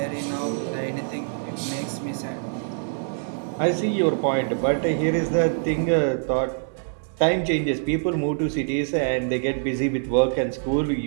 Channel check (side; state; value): left; silent; digital silence